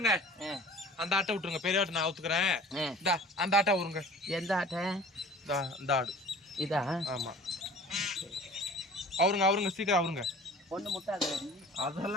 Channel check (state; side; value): normal; both; correlation 0.44